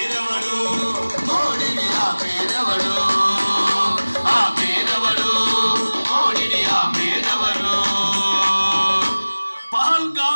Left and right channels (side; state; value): both; inverted; correlation -1.00